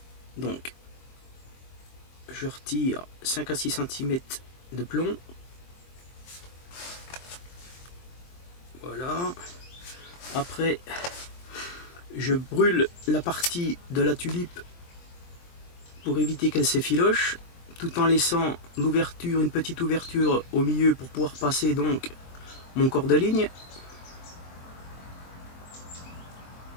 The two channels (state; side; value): late; right; 23 ms